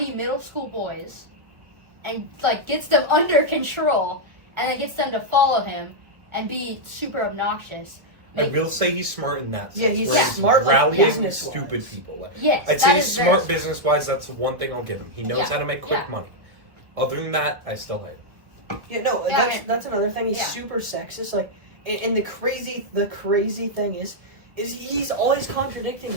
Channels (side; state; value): left; late; 1.5 ms